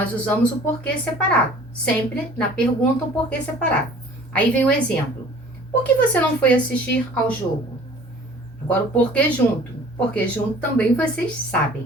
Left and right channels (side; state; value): both; normal; correlation 0.49